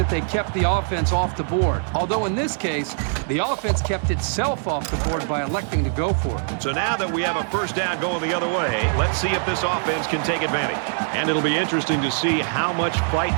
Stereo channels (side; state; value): left; silent; digital silence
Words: they kept the offense off the board. Although in this case, the offense kept itself off the board by electing to go for it. So now that we have a 1st down going the other way, let's see if this offense can take advantage. And it'll be interesting to see how much fight